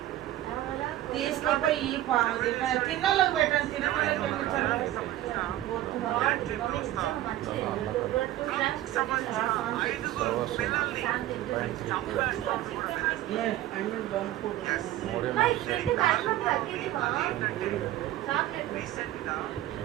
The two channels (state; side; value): quieter; left; 14.3 dB